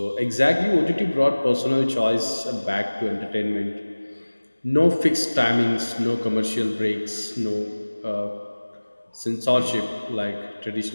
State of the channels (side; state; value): both; inverted; correlation -1.00